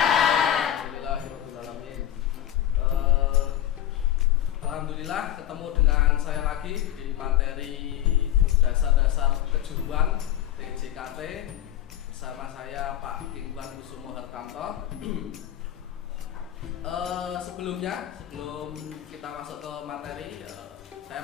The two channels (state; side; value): quieter; right; 12.0 dB